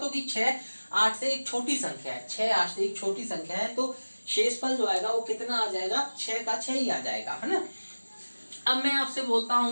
6 8 से एक छोटी संख्या है, तो शेषफल जो आएगा वो कितना आ जाएगा, 6 का 6 ही आ जाएगा, है ना। अब मैं आपसे बोलता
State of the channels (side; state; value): both; inverted; correlation -1.00